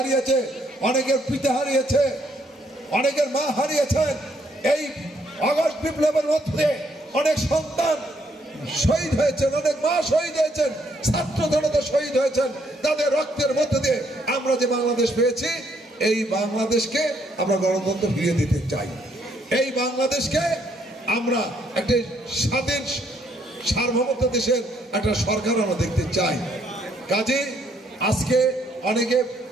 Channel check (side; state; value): both; normal; correlation 0.70